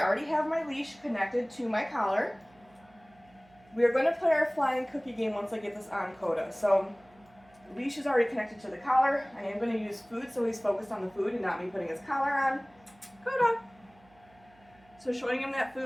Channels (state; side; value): noise; right; hum, 29 dB below the sound